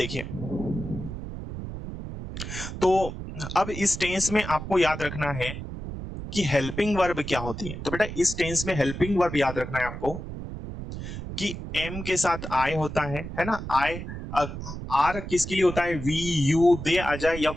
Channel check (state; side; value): noise; right; rumble, 8 dB below the sound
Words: तो अब इस टेंस में आपको याद रखना है कि हेल्पिंग वर्ब क्या होती है। तो बेटा इस टेंस में हेल्पिंग वर्ब याद रखना है आपको कि एम के साथ आई होता है ना। आई, आर किसके लिए होता है? वी यू दे आ जाए या